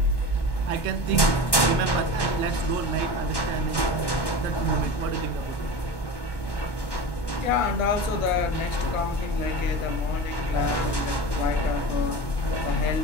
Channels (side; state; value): right; late; 1.1 ms